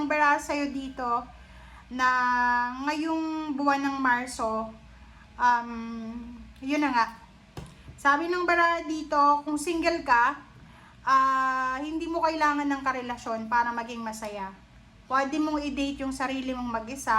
baraha sa'yo dito na ngayong buwan ng Marso, yun na nga. Sabi ng baraha dito, kung single ka, hindi mo kailangan ng karelasyon para maging masaya. Pwede mong i-date yung sarili mong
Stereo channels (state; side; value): identical; both; correlation 1.00